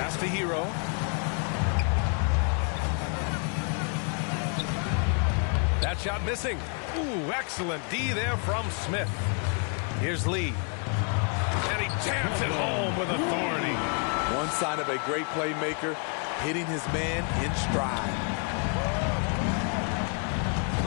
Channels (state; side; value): quieter; right; 39.8 dB